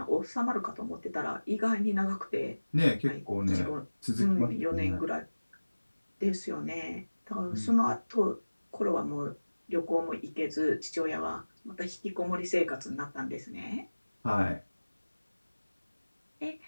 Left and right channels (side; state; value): both; inverted; correlation -1.00